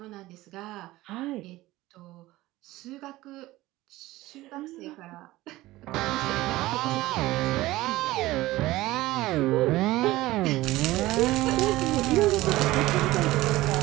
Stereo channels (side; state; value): left; quieter; 17.8 dB